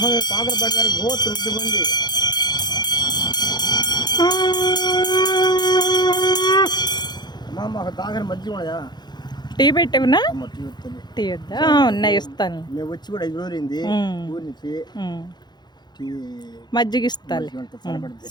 పాకలపాటి వారి గోత్ర వృద్ధి పొంది అమ్మా మాకు తాగని మధ్య ఉన్నాయా? టీ పెట్టవునా? టీ వద్దా? ఉన్నాయి, ఇస్తాను. మేము వచ్చి కూడా 5 రోజులైంది ఊరి నుంచి. మజ్జిగ ఇస్తాను.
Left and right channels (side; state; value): right; late; 0.21 ms